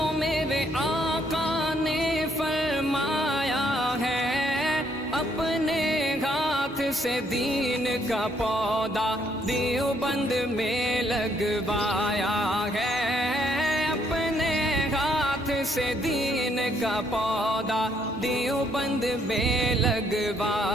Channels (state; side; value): normal; both; correlation 0.70